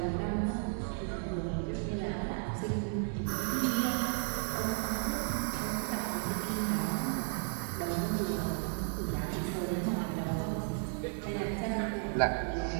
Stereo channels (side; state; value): left; silent; 55 dB below the other